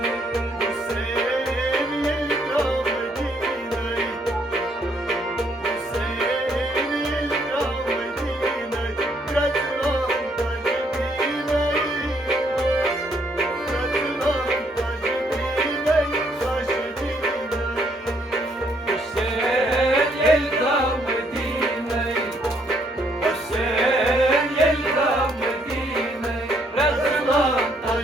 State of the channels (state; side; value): normal; both; correlation 0.70